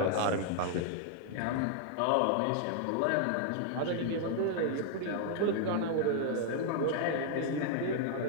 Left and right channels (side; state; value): both; different; correlation -0.01